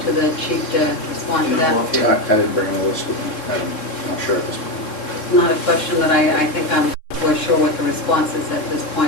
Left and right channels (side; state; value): right; late; 3.7 ms